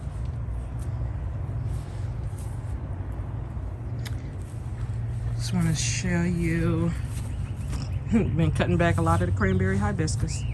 Just want to show you, been cutting back a lot of the cranberry hibiscus.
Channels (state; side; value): identical; both; correlation 1.00